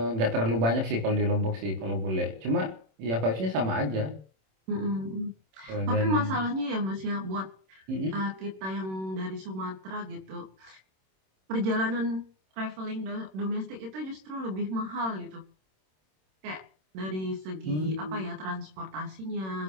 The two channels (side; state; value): left; late; 26 ms